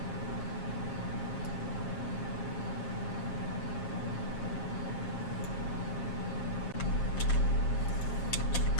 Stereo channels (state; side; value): late; right; 7.4 ms